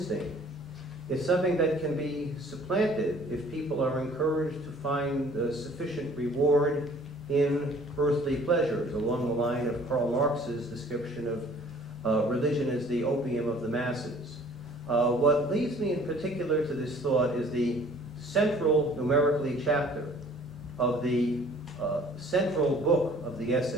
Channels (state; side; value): normal; both; correlation 0.53